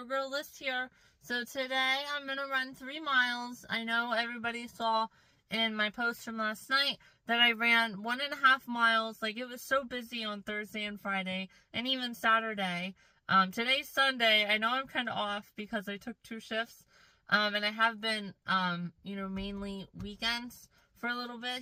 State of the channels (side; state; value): both; identical; correlation 1.00